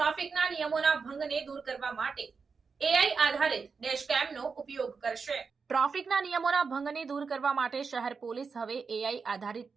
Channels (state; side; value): quieter; left; 5.2 dB